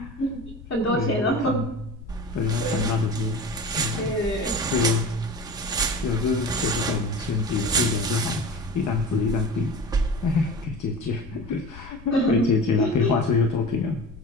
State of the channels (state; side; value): noise; left; rumble, 17 dB below the sound